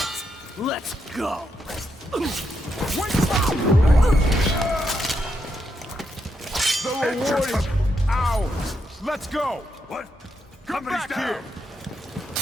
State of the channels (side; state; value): both; normal; correlation 0.81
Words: Let's go! The reward is ours! Let's go! What? Come Company's back down. here!